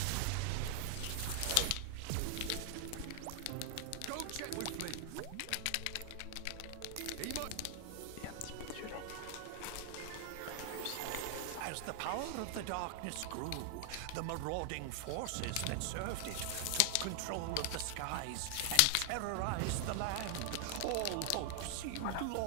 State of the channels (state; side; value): different; both; correlation 0.00